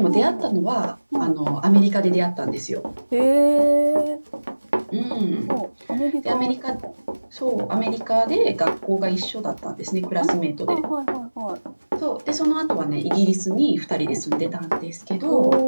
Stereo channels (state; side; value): inverted; both; correlation -1.00